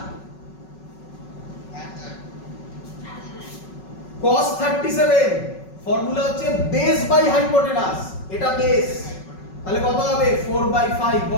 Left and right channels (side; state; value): right; late; 5.4 ms